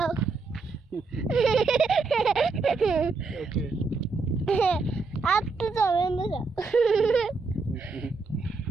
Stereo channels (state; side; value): quieter; left; 4.2 dB